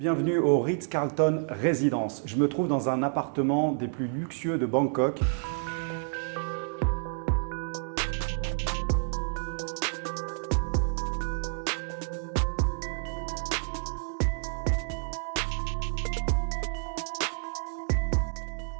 Bienvenue au Ritz-Carlton Résidence. Je me trouve dans un appartement des plus luxueux de Bangkok.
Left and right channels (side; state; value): left; silent; 58 dB below the other